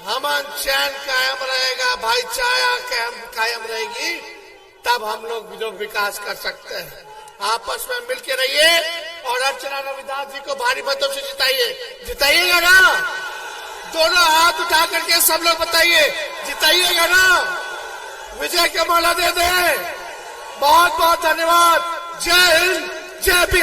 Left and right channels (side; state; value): both; identical; correlation 1.00